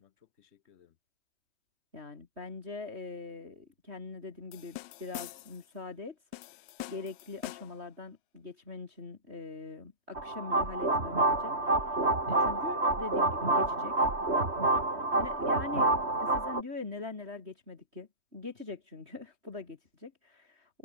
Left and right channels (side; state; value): left; late; 3.2 ms